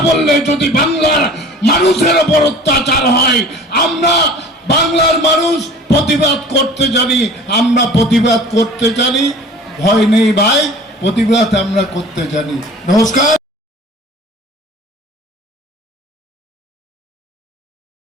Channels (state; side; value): normal; both; correlation 0.44